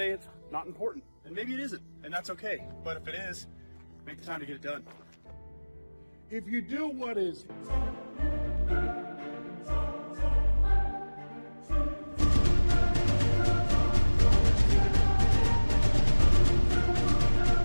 it's not important. And maybe it isn't, and that's okay. But if it is, make the time to get it done. If you do what is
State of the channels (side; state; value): both; inverted; correlation -1.00